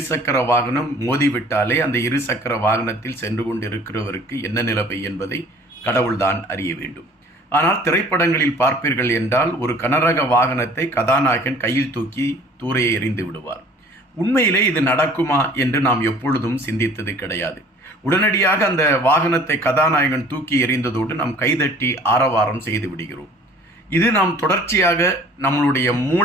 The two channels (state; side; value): normal; both; correlation 0.51